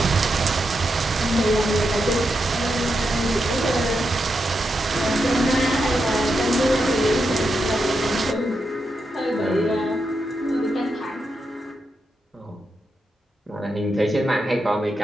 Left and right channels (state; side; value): normal; both; correlation 0.85